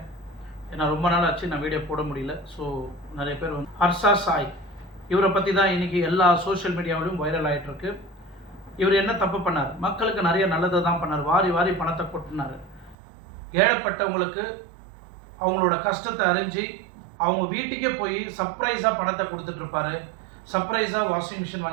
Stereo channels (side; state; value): left; drops out; at 13.0 s